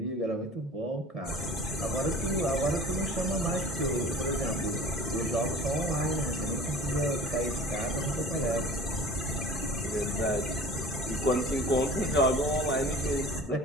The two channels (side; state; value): both; normal; correlation 0.42